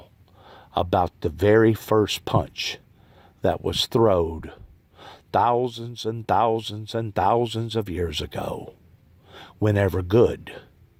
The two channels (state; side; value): identical; both; correlation 1.00